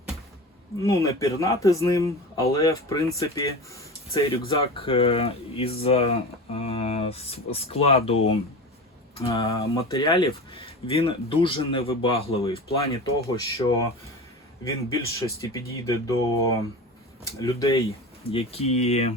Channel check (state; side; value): normal; both; correlation 0.30